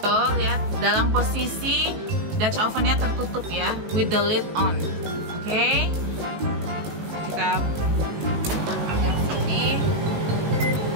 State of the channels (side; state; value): left; late; 18 ms